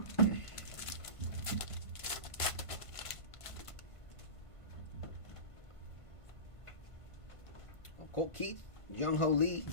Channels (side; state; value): right; late; 1.5 ms